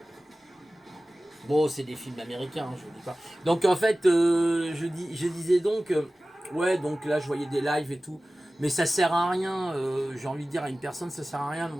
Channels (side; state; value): both; normal; correlation 0.96